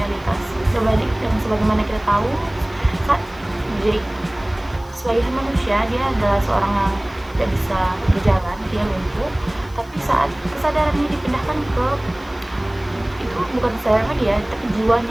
Sebagaimana kita tahu, saat Jake sebagai manusia, dia adalah seorang yang tidak bisa berjalan, dia lumpuh, tapi saat kesadarannya dipindahkan ke, itu bukan kesadarannya dia, tapi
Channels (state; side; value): noise; left; hiss, 27 dB below the sound